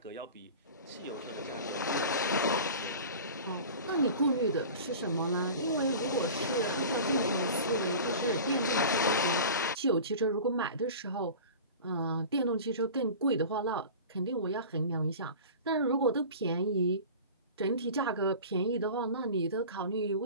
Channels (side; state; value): both; inverted; correlation -0.37